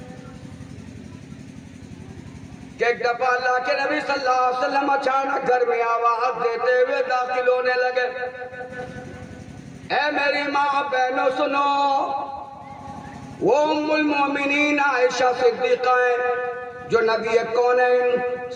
کہ ایک دفعہ اللہ کے نبی صلی اللہ علیہ وسلم اچانک گھر میں آواز دیتے ہوئے داخل ہونے لگے، اے میری ماں بہنوں سنو، وہ ام المومنین عائشہ صدیقہ ہیں جو نبی کونین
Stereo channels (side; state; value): both; identical; correlation 1.00